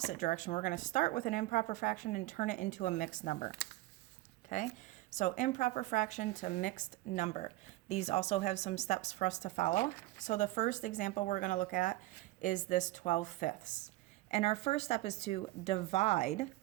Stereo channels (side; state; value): left; quieter; 18.3 dB